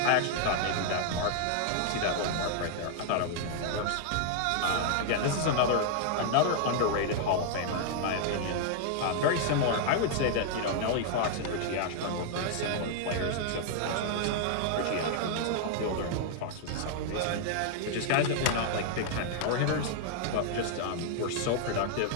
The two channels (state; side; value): different; both; correlation 0.00